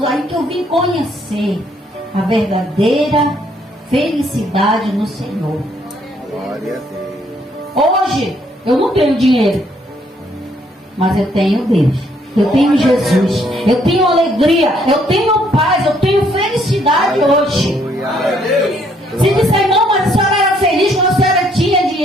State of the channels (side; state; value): both; normal; correlation 0.68